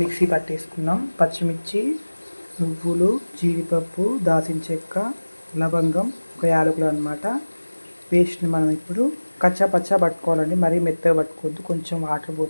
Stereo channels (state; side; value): inverted; both; correlation -1.00